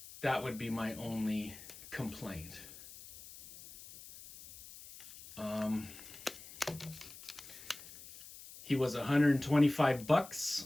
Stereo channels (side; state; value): left; noise; hiss, 16 dB below the sound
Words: that would be my only complaint. He was